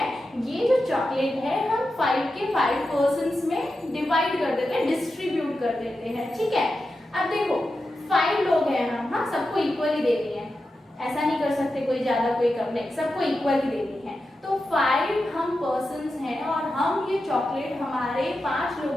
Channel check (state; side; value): normal; both; correlation 0.90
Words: ये जो चॉकलेट है हम 5 के 5 पर्सन्स में डिवाइड कर देते हैं, डिस्ट्रीब्यूट कर देते हैं, ठीक है. अब देखो 5 लोग हैं हम, हाँ, सबको इक्वली देनी है. ऐसा नहीं कर सकते कोई ज्यादा कोई कम, नहीं, सबको इक्वली देनी है. तो 5 हम पर्सन्स हैं और हम ये चॉकलेट हमारे 5